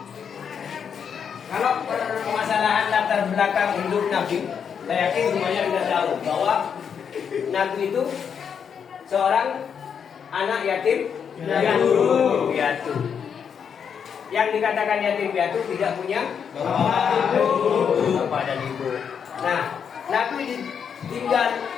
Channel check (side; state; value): right; quieter; 7.3 dB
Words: Kalau permasalahan latar belakang hidup Nabi, saya yakin semuanya sudah tahu bahwa Nabi itu seorang anak yatim piatu. Yang dikatakan yatim piatu tidak punya bapak dan ibu. Nah, Nabi ditinggal,